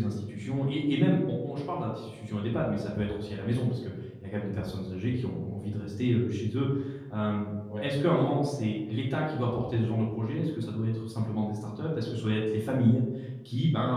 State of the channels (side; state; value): both; identical; correlation 1.00